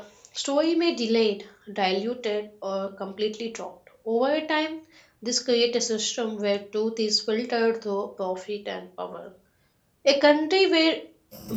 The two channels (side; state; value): both; identical; correlation 1.00